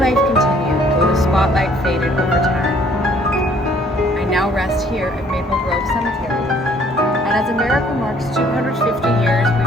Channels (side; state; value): both; normal; correlation 0.60